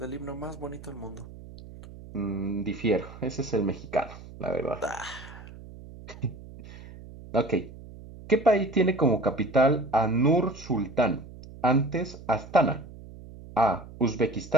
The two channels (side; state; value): right; noise; hum, 16 dB below the sound